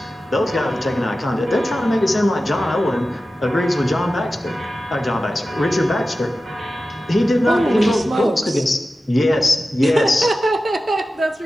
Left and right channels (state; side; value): normal; both; correlation 0.94